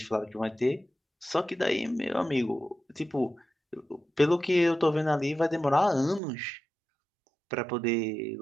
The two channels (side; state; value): left; drops out; at 6.2 s